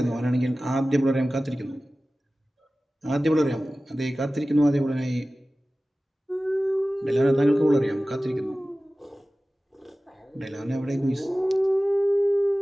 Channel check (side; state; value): both; normal; correlation 0.96